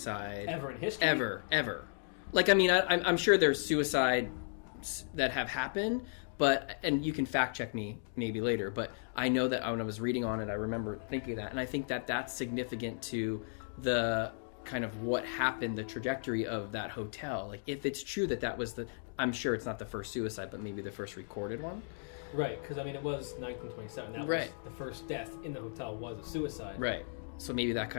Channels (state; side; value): silent; right; digital silence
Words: ever in history. Ever. Like, I'm sure there's suicides that have happened, and you can fact check me maybe later, but I know that when I was reading on it, I remember thinking that, and I think that that's significant to the kind of what happened, the trajectory of that hotel. Like, if it's true that was I'm sure it's not the first suicide, but maybe the first recorded one. Right, because, I mean, it was 1927. That was the first death in the hotel was a suicide. Right. So maybe that